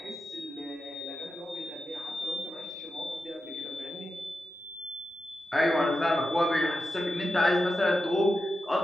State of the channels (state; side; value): normal; both; correlation 0.89